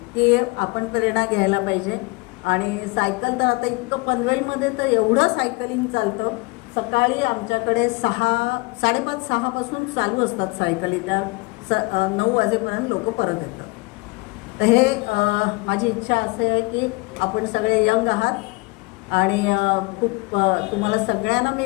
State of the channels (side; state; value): right; quieter; 25.9 dB